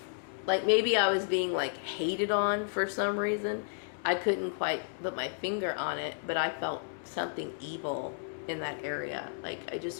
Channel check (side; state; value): right; silent; digital silence